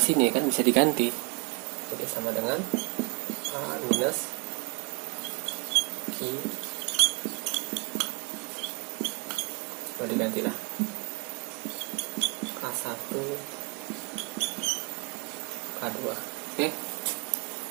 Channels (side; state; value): left; quieter; 32.6 dB